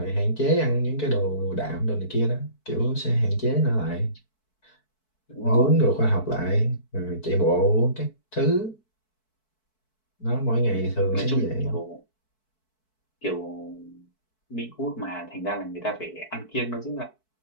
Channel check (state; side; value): late; right; 4.6 ms